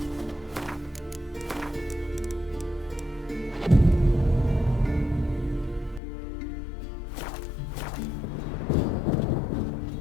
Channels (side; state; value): right; drops out; at 6.0 s